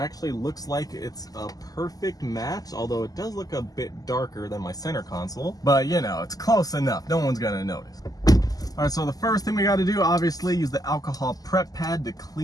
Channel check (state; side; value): late; right; 0.18 ms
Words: looks like it's a perfect match, although it does look a bit darker than my center console, but you know, it's close enough. No one's gonna notice. All right, so the first thing we got to do, obviously, use the alcohol prep pad to